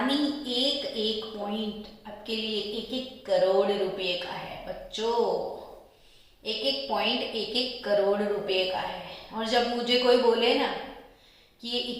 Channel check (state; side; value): identical; both; correlation 1.00